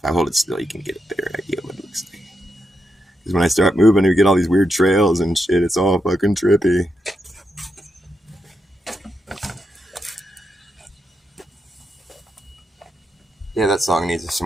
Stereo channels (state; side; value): normal; both; correlation 0.84